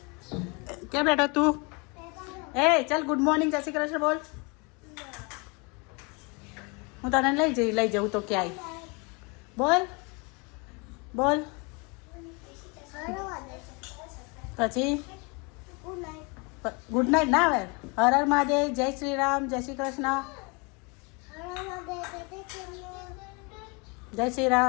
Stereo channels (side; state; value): right; quieter; 30.5 dB